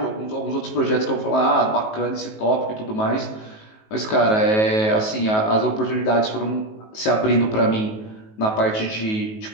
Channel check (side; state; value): right; late; 19 ms